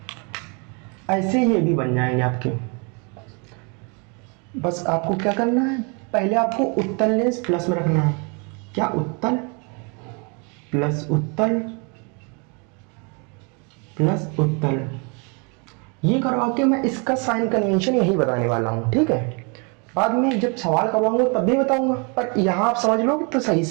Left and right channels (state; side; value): quieter; left; 33.9 dB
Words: ऐसे ये भी बन जाएंगे आपके। बस आपको क्या करना है, पहले आपको उत्तल लेंस प्लस में रखना है, क्या उत्तल प्लस उत्तल प्लस उत्तल, ये करवा के मैं इसका साइन कन्वेंशन यही बताने वाला हूँ, ठीक है। बाद में जब सवाल करवाऊंगा तब भी बताऊंगा, पर यहाँ आप समझ लोगे तो सही